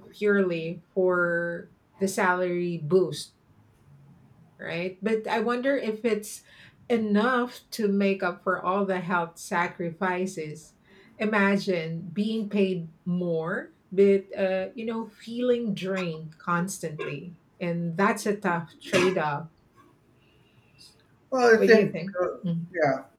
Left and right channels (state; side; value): identical; both; correlation 1.00